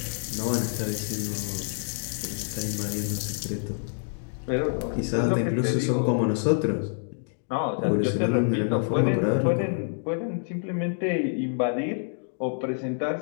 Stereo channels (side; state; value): right; silent; digital silence